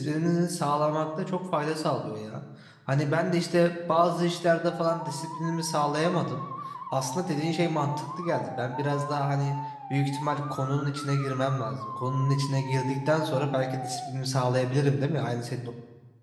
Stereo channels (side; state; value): both; identical; correlation 1.00